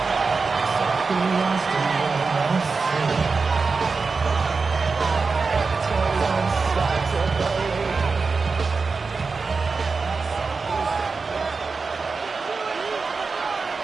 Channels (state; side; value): quieter; left; 4.5 dB